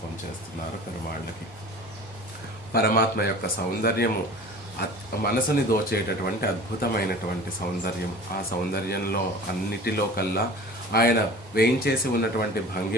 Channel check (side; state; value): both; normal; correlation 0.41